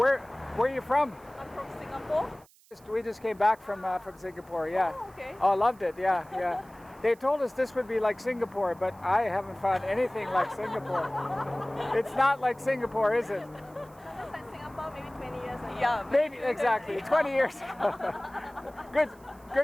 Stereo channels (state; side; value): noise; right; hiss, 28 dB below the sound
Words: are you from? I'm from Singapore. We just came back from Singapore, yeah. Oh, okay. Oh, loved it, yeah. They told us this would be like Singapore, but I haven't found anything like Singapore. It's not like Singapore, is it? It's like Singapore maybe 20 years ago. Yeah, Maybe, exactly, 20 years ago.